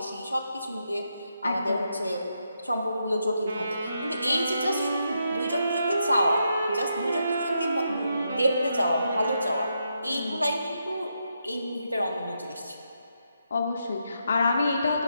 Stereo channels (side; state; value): both; inverted; correlation -0.82